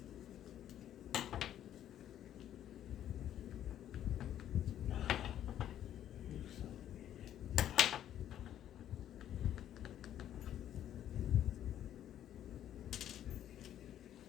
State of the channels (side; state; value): right; quieter; 11.1 dB